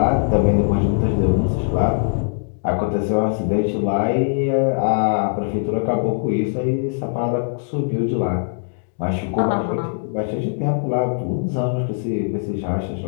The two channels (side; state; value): right; silent; digital silence